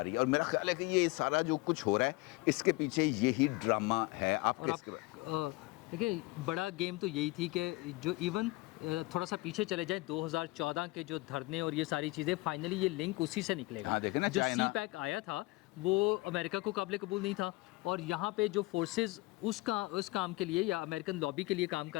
رہی ہے. اور میرا خیال ہے کہ یہ سارا جو کچھ ہو رہا ہے اس کے پیچھے یہی ڈرامہ ہے. آپ اور دیکھیں بڑا گیم تو یہی تھی کہ جو ایون تھوڑا سا پیچھے چلے جائیں 2014 کے جو دھرنے اور یہ ساری چیزیں فائنلی یہ لنک اسی سے نکلے گا. جو سی پیک آیا تھا وہ امریکہ کو قابل قبول نہیں تھا, اور یہاں پہ جو فورسز اس کام کے لیے یا امریکن لابی کے لیے کام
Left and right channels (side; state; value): right; quieter; 22.4 dB